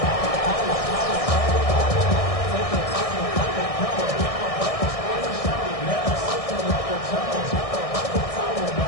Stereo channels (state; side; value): late; right; 1.6 ms